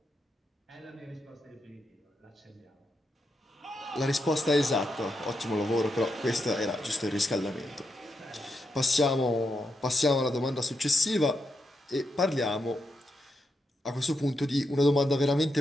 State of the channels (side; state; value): both; normal; correlation 0.84